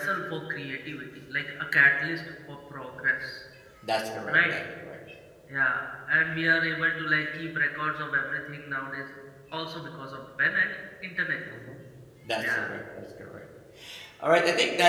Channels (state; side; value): identical; both; correlation 1.00